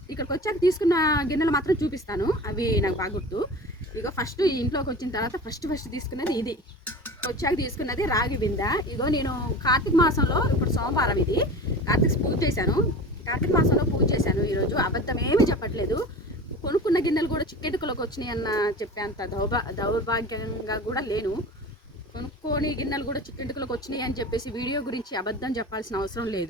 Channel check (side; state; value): both; normal; correlation 0.35